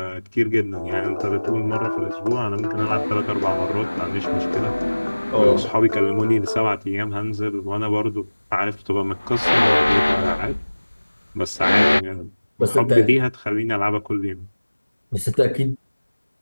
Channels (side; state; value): both; inverted; correlation -1.00